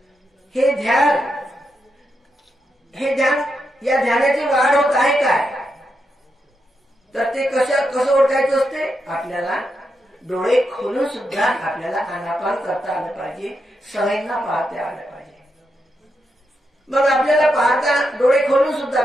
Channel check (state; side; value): normal; both; correlation 0.84